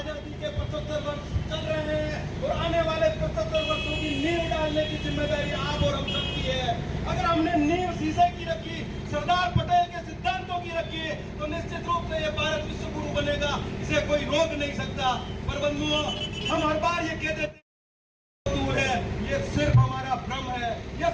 के 75 वर्ष चल रहे हैं और आने वाले 75 वर्षों की नींव डालने की जिम्मेदारी आप और हम सबकी है। अगर हमने नींव शीशे की रखी, सरदार पटेल के सिद्धांतों की रखी, तो निश्चित रूप से ये भारत विश्व गुरु बनेगा, इसे कोई रोक नहीं सकता। पर बंधुओं, हम हर बार ये कहते थे दूर है, ये सिर्फ हमारा भ्रम है, ये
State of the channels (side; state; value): both; identical; correlation 1.00